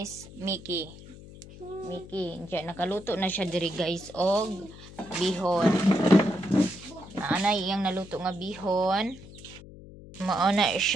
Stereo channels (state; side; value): noise; left; hum, 17 dB below the sound